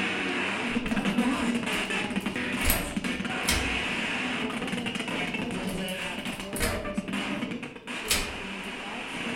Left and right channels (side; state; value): both; identical; correlation 1.00